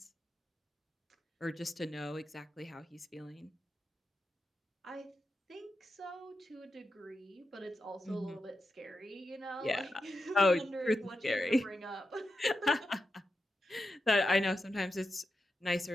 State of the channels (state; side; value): normal; both; correlation 0.89